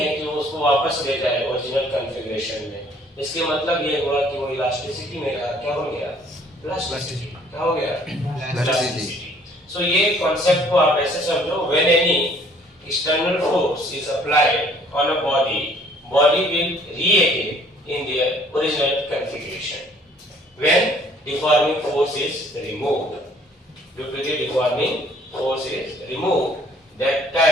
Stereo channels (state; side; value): normal; both; correlation 0.59